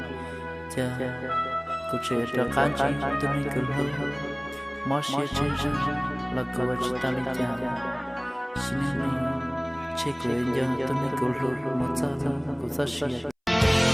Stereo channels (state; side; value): identical; both; correlation 1.00